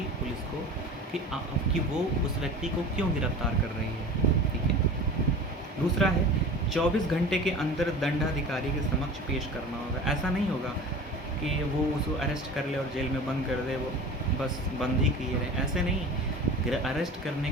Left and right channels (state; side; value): normal; both; correlation 0.37